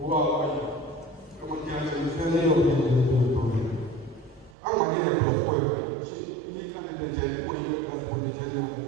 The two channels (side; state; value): left; drops out; at 4.5 s